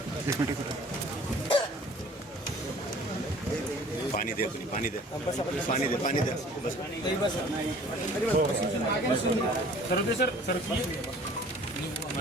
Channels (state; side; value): normal; both; correlation 0.50